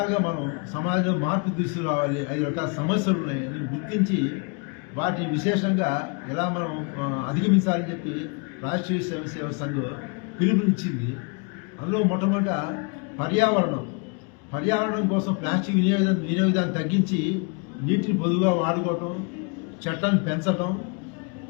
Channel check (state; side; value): quieter; right; 34.2 dB